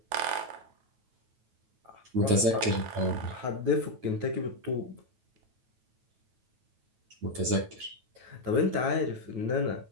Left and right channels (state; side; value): late; left; 9.2 ms